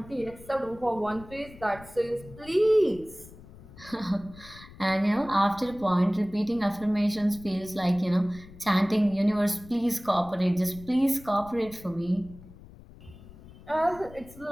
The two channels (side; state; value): left; noise; rumble, 19 dB below the sound